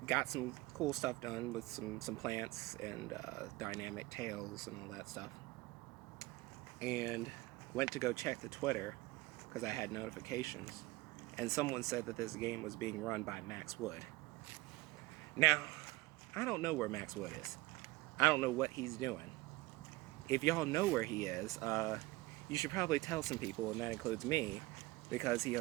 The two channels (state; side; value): quieter; left; 20.5 dB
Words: Got some cool stuff done with some plants and dynamic tails and all that stuff. And went to go check the Twitter because I had notifications, and someone said that this game was being run by Max Wood. Now, I don't know where Max Wood is. I don't know what he's doing. If y'all know where he is, you should probably tell some people, and that includes me, because he